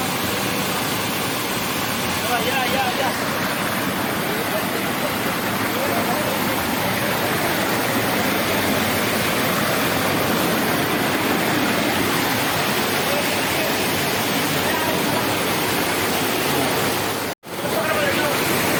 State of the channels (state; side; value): identical; both; correlation 1.00